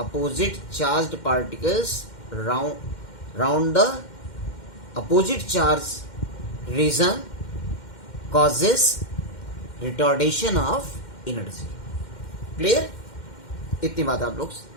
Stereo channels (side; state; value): right; late; 2.1 ms